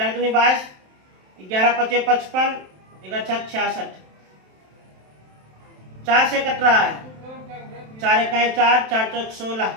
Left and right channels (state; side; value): late; left; 27 ms